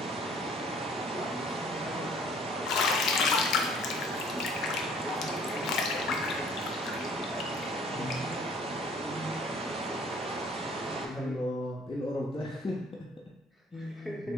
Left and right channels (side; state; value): both; normal; correlation 0.55